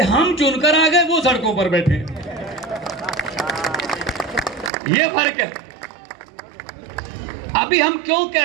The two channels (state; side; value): drops out; left; at 4.7 s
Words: हम चुनकर आ गए, वो सड़कों पर बैठे। ये फर्क है। अभी हम क्यों